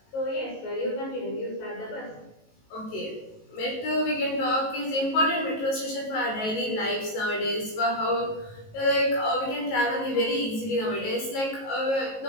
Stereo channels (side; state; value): right; late; 19 ms